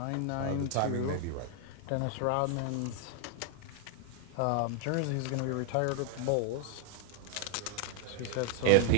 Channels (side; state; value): both; different; correlation 0.00